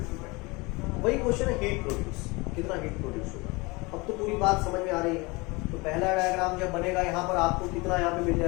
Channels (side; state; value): right; quieter; 25.3 dB